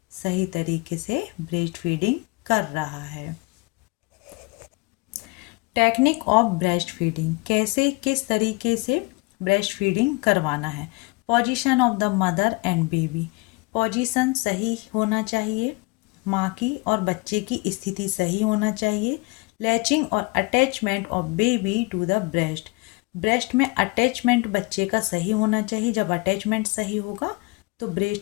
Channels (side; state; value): right; quieter; 26.4 dB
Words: सही तरीके से ब्रेस्ट फीडिंग कर रहा है। टेक्निक ऑफ ब्रेस्ट फीडिंग, कैसे किस तरीके से ब्रेस्ट फीडिंग करवाना है। Position of the mother and baby, position सही होना चाहिए, माँ की और बच्चे की स्थिति सही होना चाहिए। लैचिंग और attachment of baby to the breast, breast में अटैचमेंट बच्चे का सही होना चाहिए। जब अटैचमेंट सही होगा तो